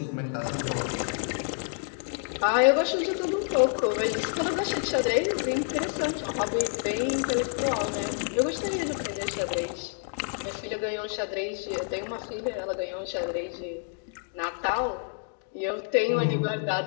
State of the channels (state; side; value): silent; right; 57 dB below the other